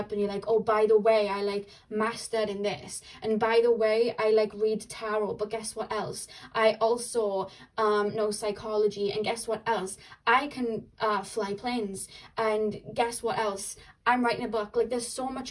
and you're like, oh, by the way, I like mastered in this, and by the way, I like read tarot, but guess what else? I also know psychology, and guess what else? I can fly planes, and guess what else? I'm writing a book. Like, there's so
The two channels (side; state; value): both; identical; correlation 1.00